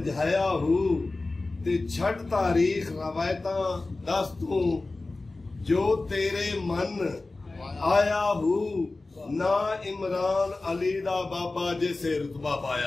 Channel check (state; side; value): quieter; right; 3.3 dB